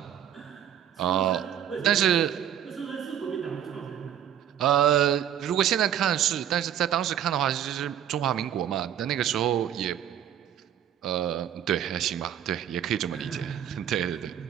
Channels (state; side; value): quieter; left; 10.2 dB